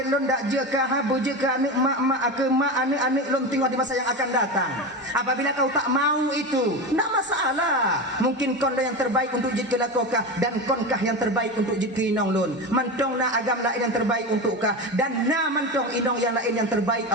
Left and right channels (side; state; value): both; normal; correlation 0.22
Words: lon dak jeka habu jeka anak mak ke mak anak lon tengok di masa yang akan datang. Apabila kau tak mau itu tak masalah, mungkin kon yang terbaik untuk jika lakokah dan konkah yang terbaik untuk jika inong lon mantong na agam lain yang terbaik untuk kah dan na mantong inong yang lain yang terbaik